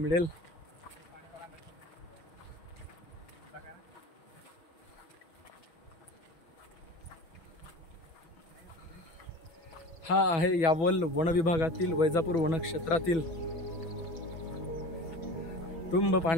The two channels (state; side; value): late; right; 6.1 ms